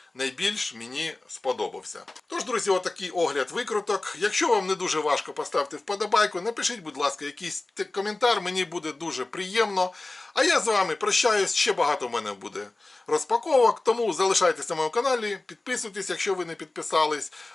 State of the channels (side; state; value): right; quieter; 3.0 dB